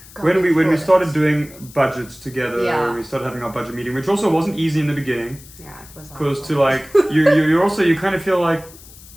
doing budgets together. We started having our budget meeting, which also wasn't easy in the beginning. Yeah, it was. Because to like you kind of feel like,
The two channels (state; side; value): noise; left; hiss, 21 dB below the sound